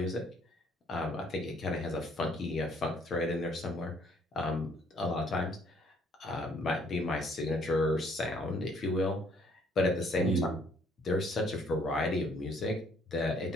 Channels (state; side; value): normal; both; correlation 0.64